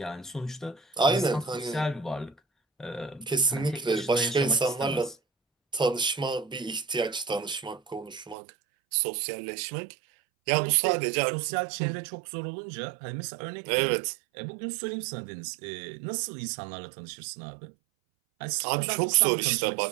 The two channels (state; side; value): drops out; left; at 8.3 s